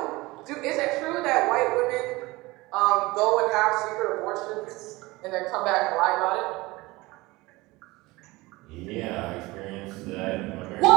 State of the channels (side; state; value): left; quieter; 21.3 dB